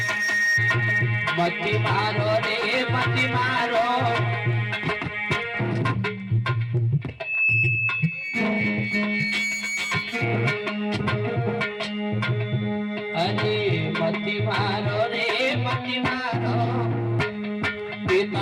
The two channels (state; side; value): identical; both; correlation 1.00